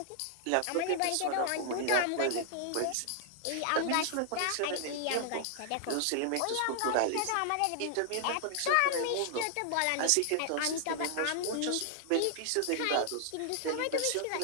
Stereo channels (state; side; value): different; both; correlation -0.01